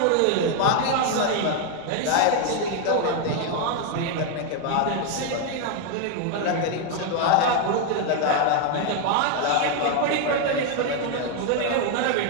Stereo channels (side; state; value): both; different; correlation 0.01